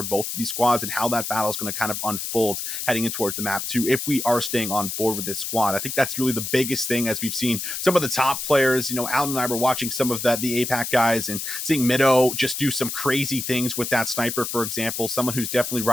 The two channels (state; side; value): noise; left; hiss, 4 dB below the sound